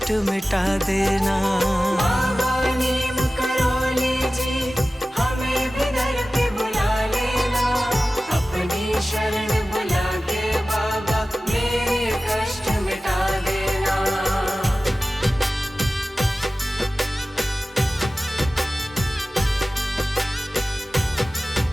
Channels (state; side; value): normal; both; correlation 0.96